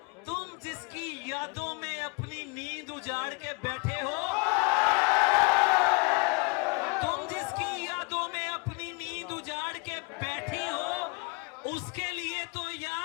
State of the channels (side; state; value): right; quieter; 29.7 dB